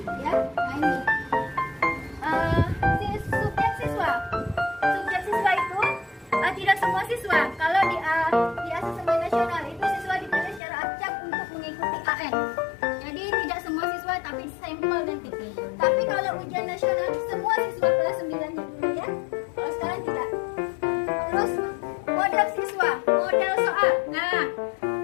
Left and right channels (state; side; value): drops out; right; at 10.6 s